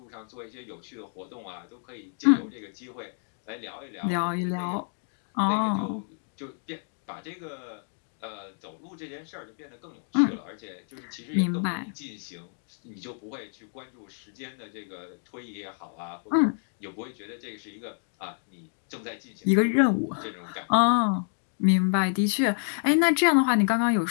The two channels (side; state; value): right; silent; 59 dB below the other